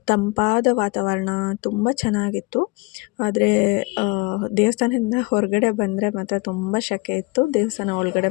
ತಂಪಾದ ವಾತಾವರಣ ತುಂಬ ಚೆನ್ನಾಗಿತ್ತು. ಆದರೆ ದೇವಸ್ಥಾನದಿಂದ ಹೊರಗಡೆ ಬಂದರೆ ಮಾತ್ರ ತುಂಬ ಸೆಕೆ ಇತ್ತು. ದೇವಸ್ಥಾನ ಒಳಗಡೆ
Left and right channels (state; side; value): quieter; right; 26.5 dB